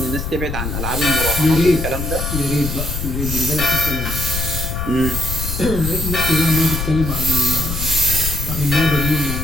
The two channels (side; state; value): left; noise; rumble, 4 dB below the sound